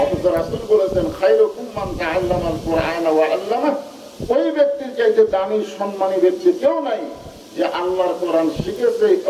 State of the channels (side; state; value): both; identical; correlation 1.00